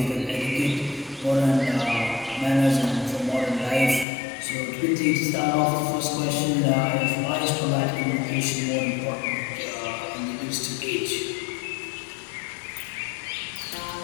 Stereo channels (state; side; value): drops out; right; at 4.0 s